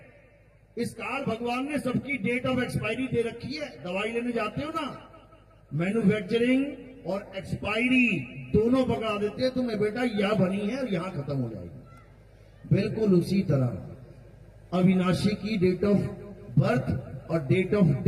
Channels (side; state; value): both; identical; correlation 1.00